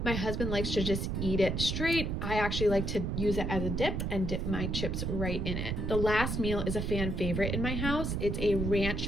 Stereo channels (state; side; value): noise; right; rumble, 1 dB below the sound